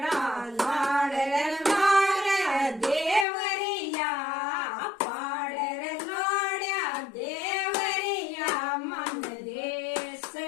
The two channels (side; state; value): right; drops out; at 3.2 s